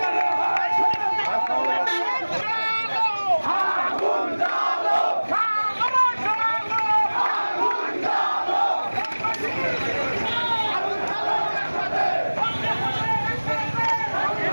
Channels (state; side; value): inverted; both; correlation -1.00